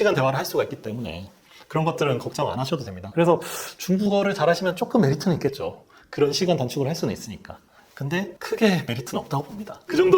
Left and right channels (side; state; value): both; identical; correlation 1.00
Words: 대화를 할 수가 있기 때문에 그런 것들은 걱정 안 하셔도 됩니다. 그래서 중국어를 잘하시면 조금 메리트는 있겠죠. 그런 시간 단축을 할 수는 있으니까. 근데 크게 메리트는 없다고 봅니다. 그